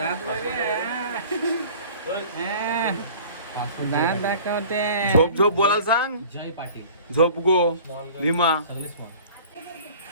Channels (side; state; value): both; inverted; correlation -0.45